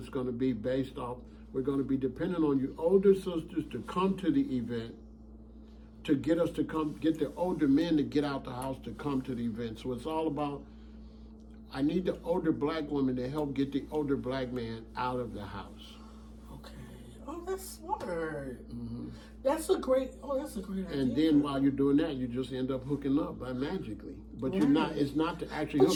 going to be based off, we're going to be dependent on you older sisters to come to the event to get us to come, get the older men to get out the house to come to the event. So it's all about, I need the older black woman to help get the older black man out of the house. Okay. Oh, that's smart. That's a great idea. And then while you're doing that, you just end up hooking up by magically. But you're not, it's not to actually But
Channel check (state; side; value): identical; both; correlation 1.00